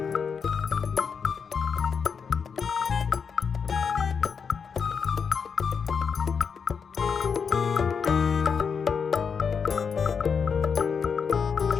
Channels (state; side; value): quieter; right; 6.2 dB